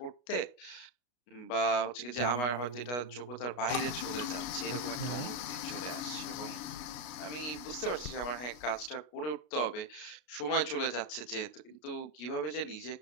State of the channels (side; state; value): right; late; 33 ms